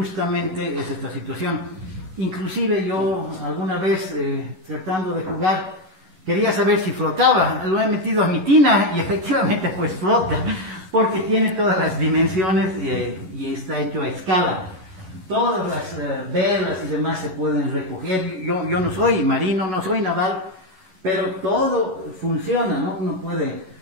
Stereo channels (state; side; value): late; left; 11 ms